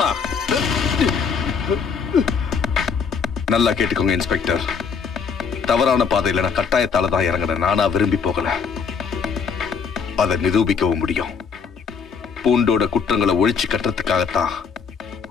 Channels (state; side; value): quieter; right; 6.0 dB